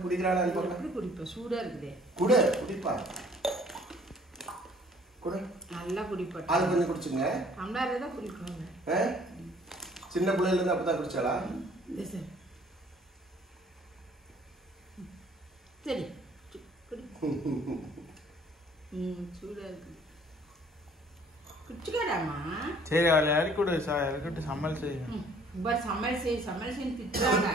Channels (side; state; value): both; normal; correlation 0.57